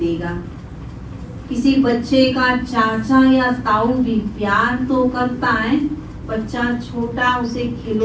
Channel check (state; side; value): identical; both; correlation 1.00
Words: किसी बच्चे का चाचा या ताऊ भी प्यार तो करता है, बच्चा छोटा उसे